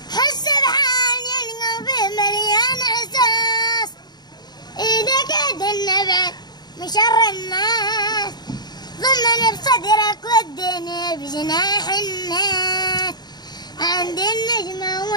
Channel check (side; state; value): right; late; 0.20 ms